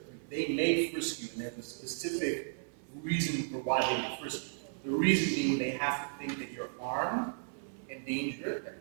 free. They may frisk you, and there's a specific reason for why they would frisk you. The reason being they have to think that you're armed and dangerous.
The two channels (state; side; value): silent; left; 55 dB below the other